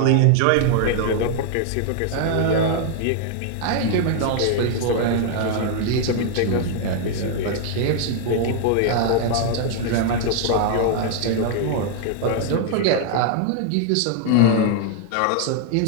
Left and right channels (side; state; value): both; different; correlation 0.00